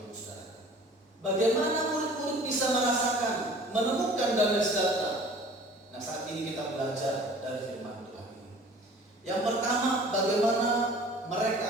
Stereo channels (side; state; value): both; normal; correlation 0.47